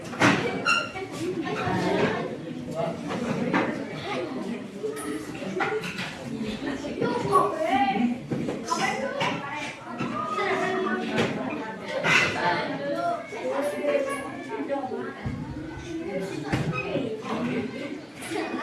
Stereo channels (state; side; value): identical; both; correlation 1.00